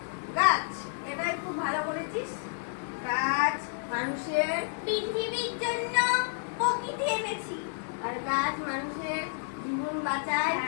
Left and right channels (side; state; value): right; silent; digital silence